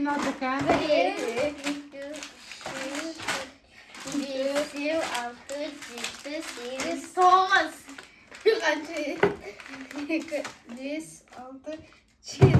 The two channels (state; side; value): identical; both; correlation 1.00